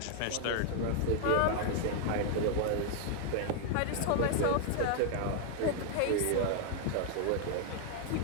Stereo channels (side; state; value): both; different; correlation 0.00